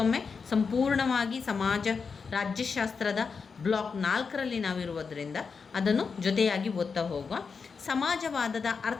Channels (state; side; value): quieter; right; 5.4 dB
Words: ಸಂಪೂರ್ಣವಾಗಿ ರಾಜ್ಯಶಾಸ್ತ್ರದ ಬ್ಲಾಕ್ 4ರಲ್ಲಿ ನಾವಿರುವುದರಿಂದ ಅದನ್ನು ಜೊತೆಯಾಗಿ ಓದ್ತಾ ಹೋಗುವ. ಸಮಾಜವಾದದ